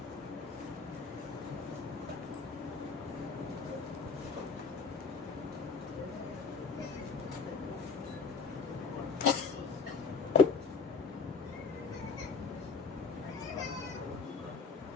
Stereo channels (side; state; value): right; quieter; 4.8 dB